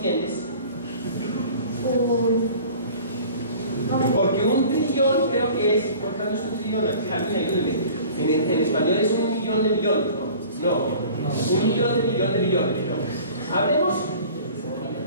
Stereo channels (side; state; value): both; inverted; correlation -0.45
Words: Porque un trillón creo que es, ¿cuánto es un trillón? En español es 1 millón de millones, ¿no? No, 1 millón de millones de millones. ¿No? Hablemos.